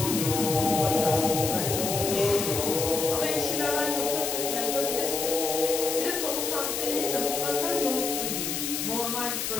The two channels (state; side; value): noise; left; hiss, 2 dB below the sound